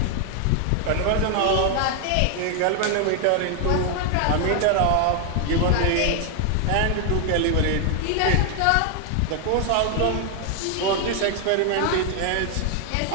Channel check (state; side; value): different; both; correlation 0.00